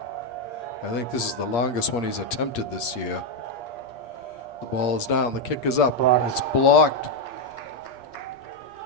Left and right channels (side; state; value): right; late; 8.5 ms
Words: I think this is the longest one he's attempted this year. The ball is down. The kick is up. Blocked. It's blocked.